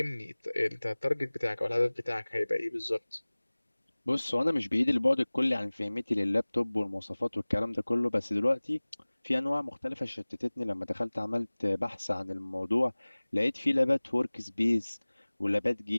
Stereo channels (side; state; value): both; inverted; correlation -1.00